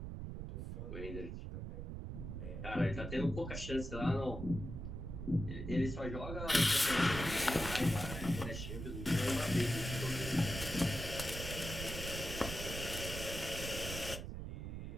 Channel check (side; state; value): right; noise; rumble, 6 dB below the sound